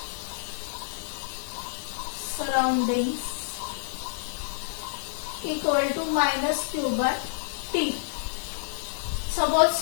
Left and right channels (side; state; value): right; silent; 59 dB below the other